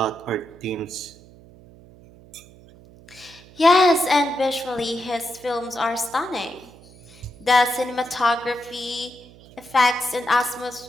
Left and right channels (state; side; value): noise; right; hum, 23 dB below the sound